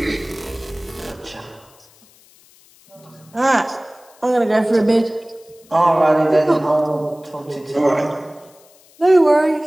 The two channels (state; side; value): noise; left; hiss, 28 dB below the sound